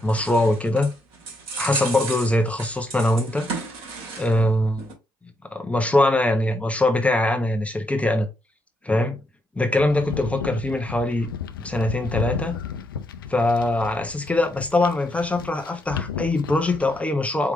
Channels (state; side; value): normal; both; correlation 0.78